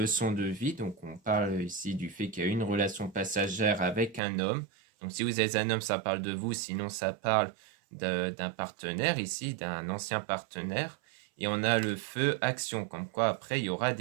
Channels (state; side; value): drops out; left; at 4.2 s